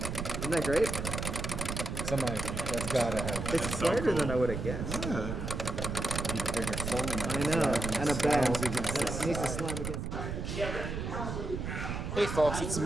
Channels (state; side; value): noise; right; rumble, 4 dB below the sound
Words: Isn't that great? That's gotta have. It's slighter than I would have guessed. Need a bigger solenoid. I know. And a band. Against It needs to slam against. Hey folks, it's